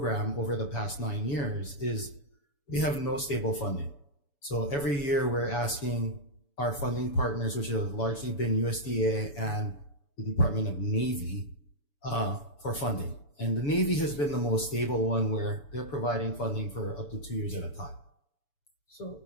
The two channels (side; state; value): right; late; 7.0 ms